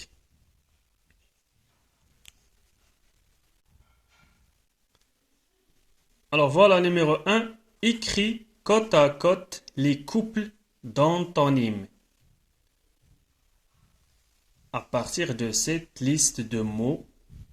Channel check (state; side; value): identical; both; correlation 1.00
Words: Alors voilà, numéro 1, écris côte à côte les couples d'antonymes. À partir de cette liste de mots,